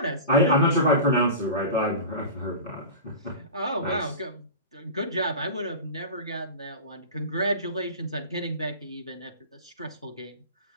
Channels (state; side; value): inverted; both; correlation -0.31